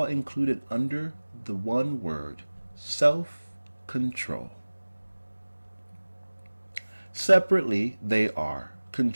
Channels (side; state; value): both; inverted; correlation -1.00